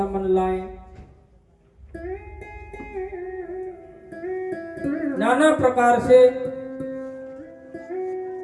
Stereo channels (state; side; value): identical; both; correlation 1.00